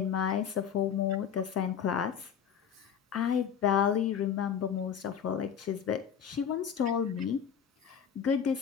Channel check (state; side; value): quieter; right; 8.1 dB